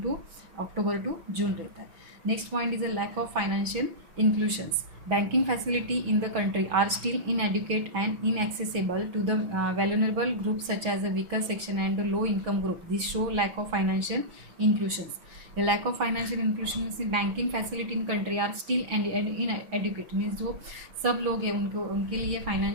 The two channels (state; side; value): late; left; 6.0 ms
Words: टू अक्टूबर टू जून रहता है। Next point is a lack of financial inclusions. Banking facility in the country are still inadequate and inaccessible to the vulnerable groups such as the weaker section and the low income group. This show lack of financial inclusions. The lack of financial inclusion in banking facility in country are still inadequate means जो सब लोग हैं उनके लिए